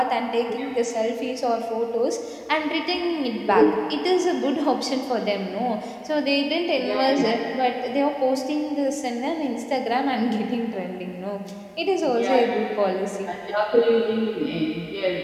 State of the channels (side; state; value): both; identical; correlation 1.00